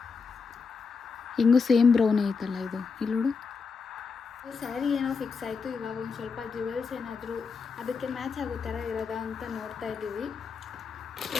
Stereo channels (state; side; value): quieter; right; 5.1 dB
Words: ಹಿಂಗೂ ಸೇಮ್ ಬ್ರೌನ್ ಐತಲ್ಲ ಇದು. ಇಲ್ಲೋಡು, ಸ್ಯಾರಿ ಏನೋ ಫಿಕ್ಸ್ ಆಯಿತು. ಇವಾಗ ಒಂದು ಸ್ವಲ್ಪ ಜ್ಯುವೆಲ್ಸ್ ಏನಾದರೂ ಅದಕ್ಕೆ ಮ್ಯಾಚ್ ಆಗೋ ಥರ ಇರೋದಾ ಅಂತ ನೋಡ್ತಾ ಇದ್ದೀವಿ.